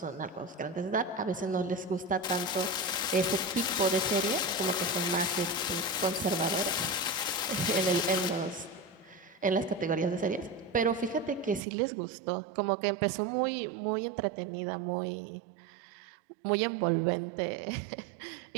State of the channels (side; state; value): left; drops out; at 11.6 s